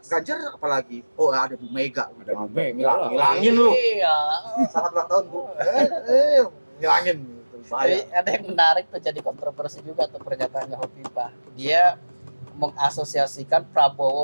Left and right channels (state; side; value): inverted; both; correlation -1.00